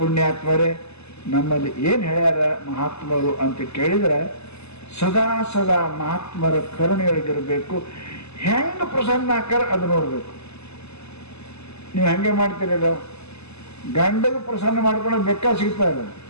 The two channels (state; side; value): late; right; 0.80 ms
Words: ನಮ್ಮಲ್ಲಿ ಏನು ಹೇಳ್ಯಾರ ಮಹಾತ್ಮರು ಅಂತ ಕೇಳಿದ್ರೆ, ಸದಾ ಸದಾ ಮಹಾತ್ಮರ ಕರುಣೆಯೊಳಗಿರಬೇಕು. ಹೆಂಗೆ ಪ್ರಸನ್ನ ಆಕಾರ ಅದು ನೋಡಬೇಕು. ನೀವು ಹೆಂಗೆ ಮಾಡ್ತೀರಲ್ಲ, ಗಂಡಗೆ ಪ್ರಸನ್ನ ಮಾಡ್ಕೊಂಡು ಬೆಕ್ಕ ಸಿಗ್ತಾ ಇಲ್ಲ.